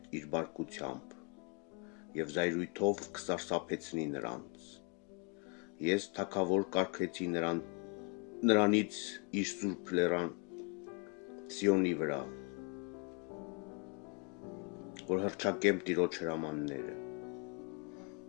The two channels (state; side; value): quieter; right; 32.9 dB